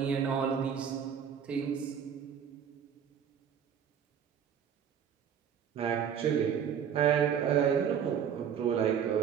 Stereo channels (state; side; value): quieter; left; 8.1 dB